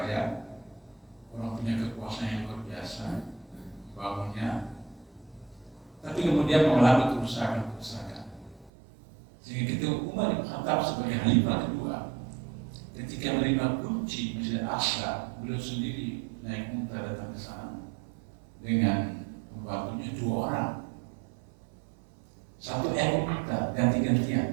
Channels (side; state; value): left; drops out; at 8.7 s